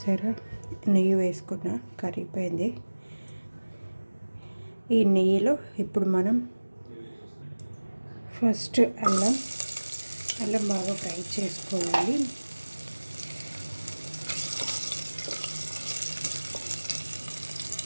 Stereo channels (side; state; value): both; inverted; correlation -1.00